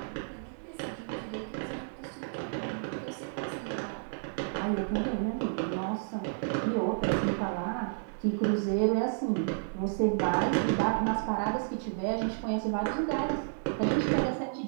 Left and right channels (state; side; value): silent; left; 57 dB below the other